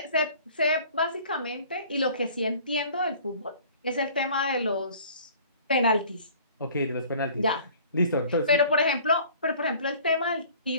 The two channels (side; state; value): both; inverted; correlation -0.50